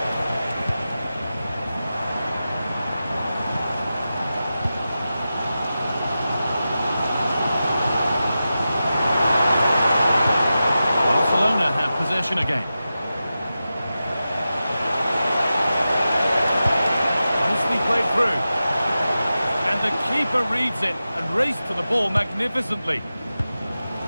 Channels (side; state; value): both; inverted; correlation -0.93